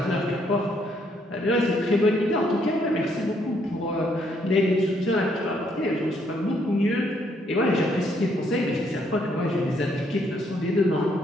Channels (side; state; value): both; normal; correlation 0.71